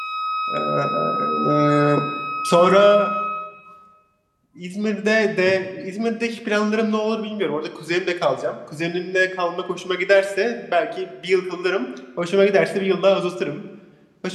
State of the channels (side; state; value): both; identical; correlation 1.00